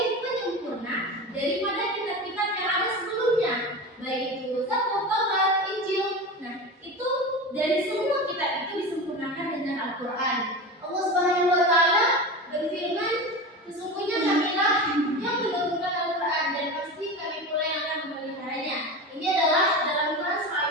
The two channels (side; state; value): both; normal; correlation 0.27